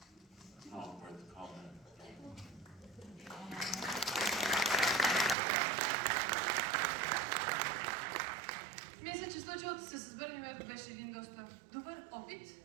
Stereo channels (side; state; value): left; drops out; at 5.4 s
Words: Not worth comment. Мисля, че случилото се с Бърни-Мадо беше един доста добър опит.